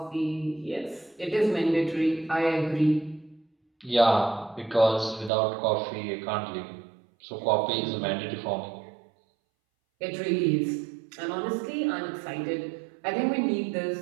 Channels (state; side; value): drops out; left; at 5.3 s